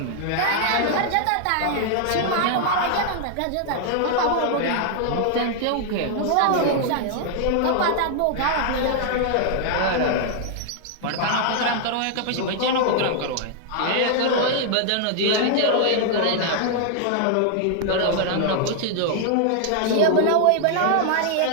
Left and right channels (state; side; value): different; both; correlation 0.00